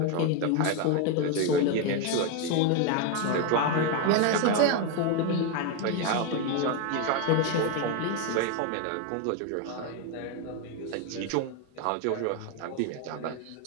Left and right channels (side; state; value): both; different; correlation 0.02